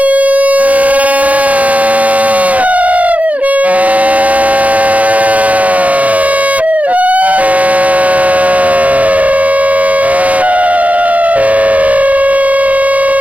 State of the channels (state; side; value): late; left; 0.068 ms